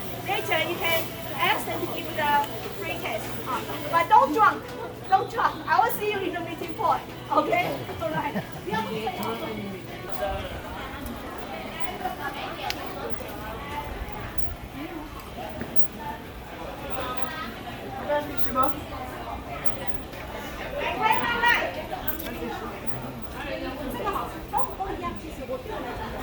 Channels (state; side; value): identical; both; correlation 1.00